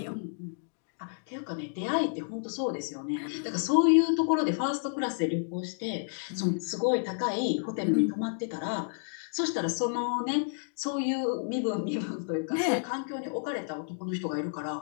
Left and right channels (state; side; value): silent; right; digital silence